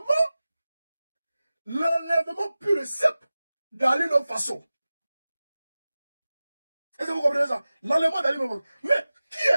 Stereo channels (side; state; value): both; inverted; correlation -0.97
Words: pur et simple d'Alino Faso. Est-ce que vous comprenez ça? L'enlèvement d'Alino Faso. Mais qui